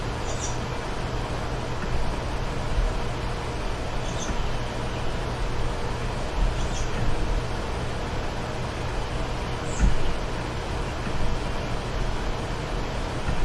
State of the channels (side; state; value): both; identical; correlation 1.00